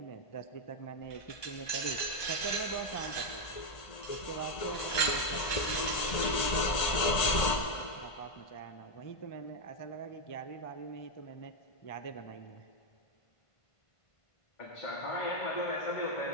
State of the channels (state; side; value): late; right; 1.5 ms